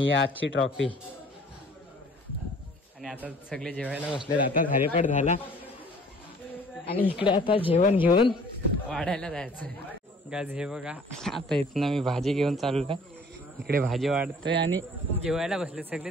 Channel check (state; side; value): normal; both; correlation 0.52